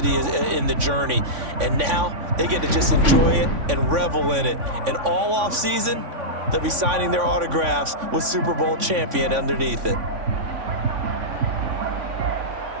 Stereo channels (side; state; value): left; late; 3.5 ms